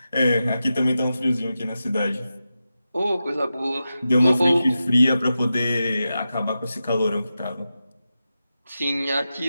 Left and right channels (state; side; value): inverted; both; correlation -0.91